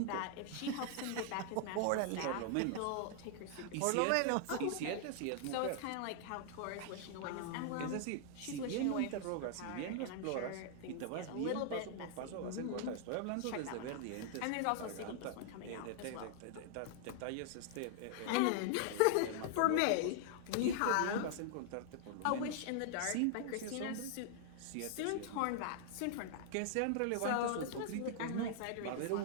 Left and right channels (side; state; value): both; different; correlation 0.00